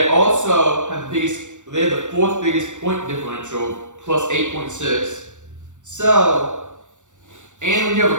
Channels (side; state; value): left; late; 0.85 ms